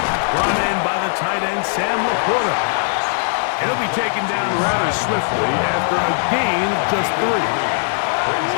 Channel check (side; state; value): right; silent; digital silence